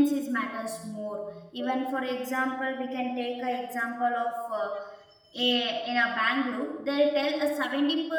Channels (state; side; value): identical; both; correlation 1.00